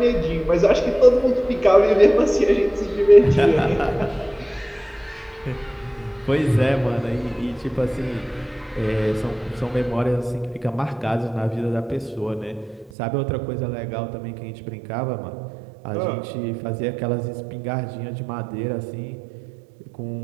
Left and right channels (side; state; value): left; drops out; at 12.9 s